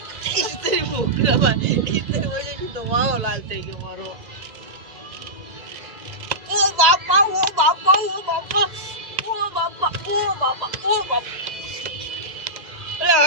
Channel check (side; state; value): left; late; 2.0 ms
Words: ઇસ્ત્રી મોકલા ભાઈ ઇસ્ત્રી વજે તો વાવ લાલ થઈ ગયો મારો ઓ બાપા અલે